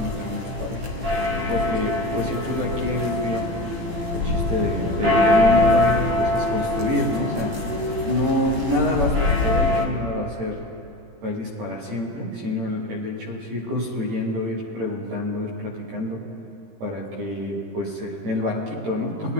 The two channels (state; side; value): late; left; 18 ms